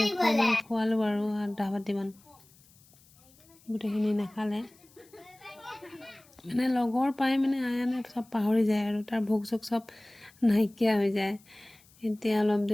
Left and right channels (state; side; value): noise; left; hiss, 28 dB below the sound